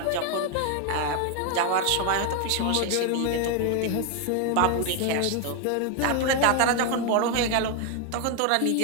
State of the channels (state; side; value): different; both; correlation 0.01